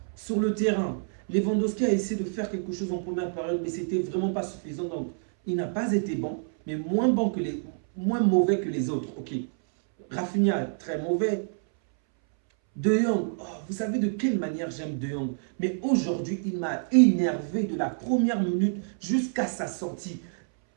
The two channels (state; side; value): silent; left; 60 dB below the other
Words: Sur le terrain, Lewandowski a essayé de faire quelque chose en première période, mais c'était vraiment pas suffisant. Donc, il n'a pas été bon, mais moins mauvais que les autres. Ok. Rafinha, très mauvais. De Jong, oh, vous savez de quelle manière j'aime De Jong. Mais aujourd'hui, il m'a énervé de la première minute jusqu'à sa sortie.